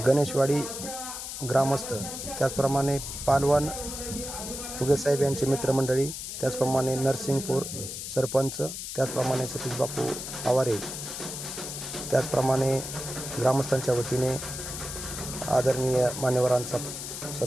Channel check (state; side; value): noise; left; hiss, 7 dB below the sound